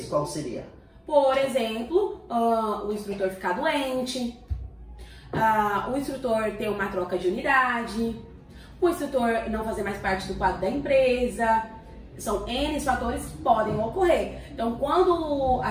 qual seria? Por exemplo, o instrutor ficar doente, o instrutor ter uma troca de unidade, o instrutor não fazer mais parte do quadro da empresa. São N fatores que podem ocorrer. Então, quando a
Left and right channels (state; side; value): identical; both; correlation 1.00